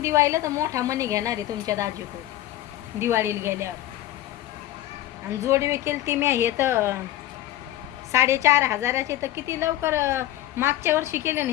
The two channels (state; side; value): quieter; right; 14.3 dB